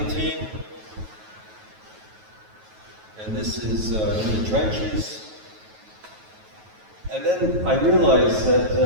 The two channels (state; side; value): late; left; 9.3 ms